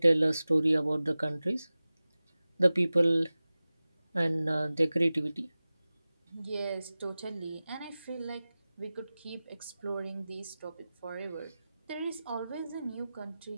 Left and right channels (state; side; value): inverted; both; correlation -0.97